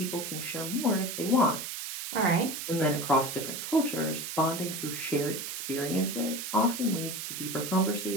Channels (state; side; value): noise; right; hiss, 6 dB below the sound